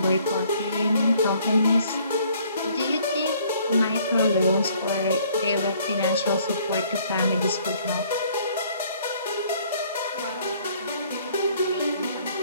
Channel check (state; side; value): inverted; both; correlation -0.61